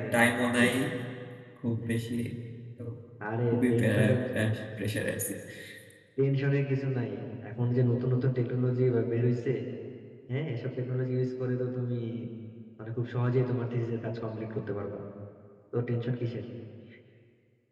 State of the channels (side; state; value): both; identical; correlation 1.00